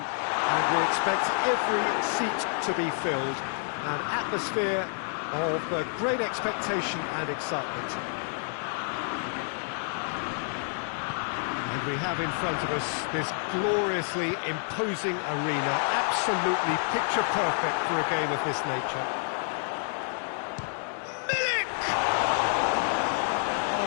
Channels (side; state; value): right; silent; 59 dB below the other